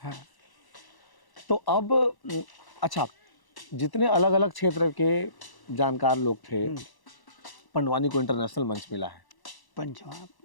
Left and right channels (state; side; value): late; right; 1.0 ms